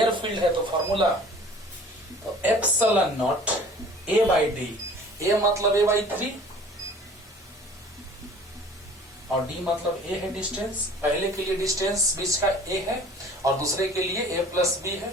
फील्ड है, तो फॉर्मूला तो epsilon naught A by D. A मतलब ए बाई 3 और डी मतलब ए है डिस्टेंस। पहले के लिए डिस्टेंस बीच का ए है और दूसरे के लिए ए प्लस बी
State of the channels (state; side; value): normal; both; correlation 0.47